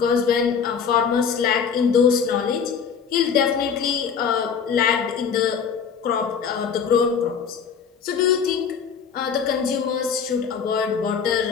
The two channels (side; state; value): right; quieter; 6.7 dB